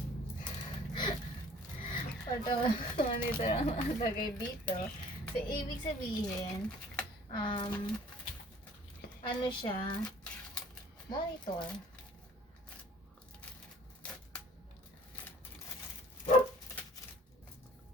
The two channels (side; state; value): both; normal; correlation 0.52